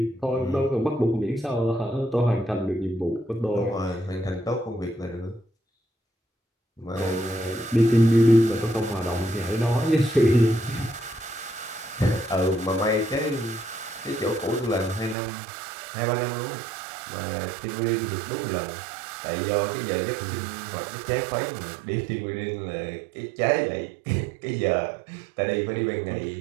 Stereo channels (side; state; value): left; drops out; at 15.2 s